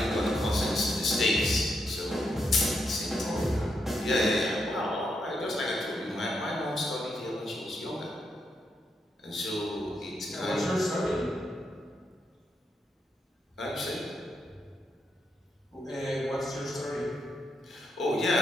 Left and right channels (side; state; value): both; normal; correlation 0.81